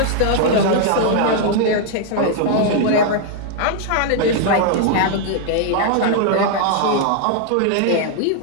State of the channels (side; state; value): both; different; correlation 0.00